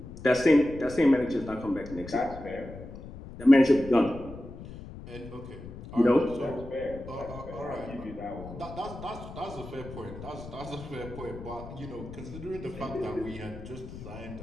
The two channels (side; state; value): left; noise; rumble, 13 dB below the sound